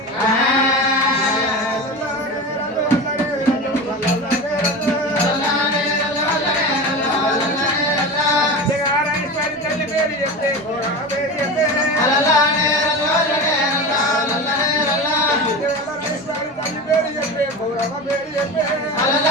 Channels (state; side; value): normal; both; correlation 0.27